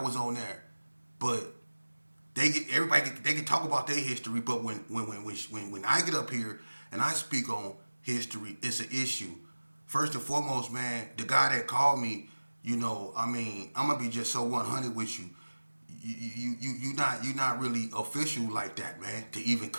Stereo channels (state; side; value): inverted; both; correlation -1.00